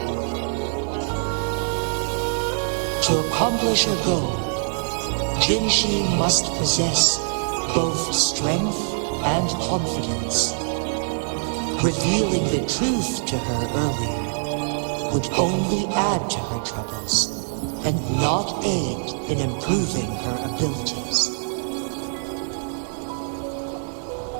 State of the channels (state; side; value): silent; left; digital silence